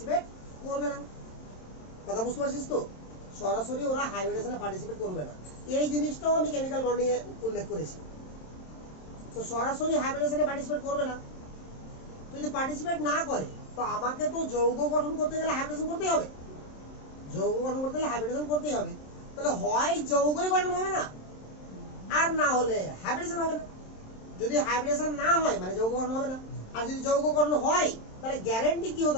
করবে না। কথা বুঝতে পারছিস তো? সরাসরি ওরা হাইব্রিডেশনে পার্টিসিপেট করবে না। এই জিনিসটাও আমি কেমিক্যাল বন্ডিং এ উল্লেখ করেছি। তো সরাসরি হাইব্রিডেশনে পার্টিসিপেট করবে না। তো যদি পার্টিসিপেট না করে তো আমাকে তো যৌগ গঠন করতে গেলে হাইব্রিডেশন করতেই হবে, যৌগ গঠন করতে গেলে হাইব্রিডেশন করতেই হবে। তাহলে হয় যৌগই গঠন হবে না, আর না হলে হাইব্রিডেশন হবে না। যদি হাইব্রিডেশন না হয় মানে যৌগকরণ হবে না, আর যদি যৌগকরণ হয় তাহলে গ্যারান্টি কি হতে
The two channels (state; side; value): late; right; 27 ms